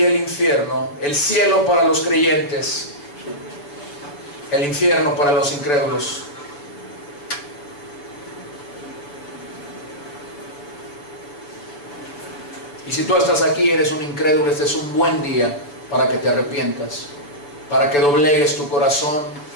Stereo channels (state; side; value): late; right; 6.9 ms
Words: el infierno. El cielo para los creyentes, el infierno para los incrédulos. Y si tú estás aquí, eres un incrédulo, este es un buen día para que te arrepientas, para que doblegues tu corazón,